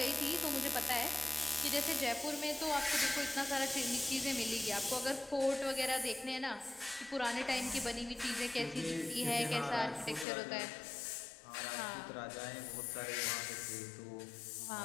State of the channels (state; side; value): drops out; right; at 10.2 s